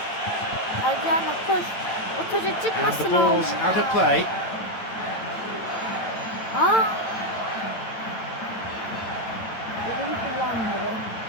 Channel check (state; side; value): late; right; 8.9 ms